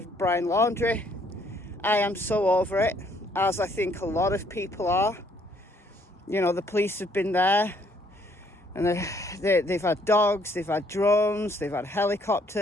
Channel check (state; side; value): normal; both; correlation 0.66